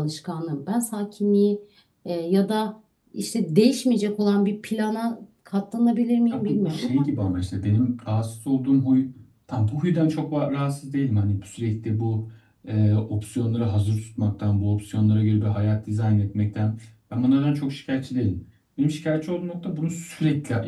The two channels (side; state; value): both; identical; correlation 1.00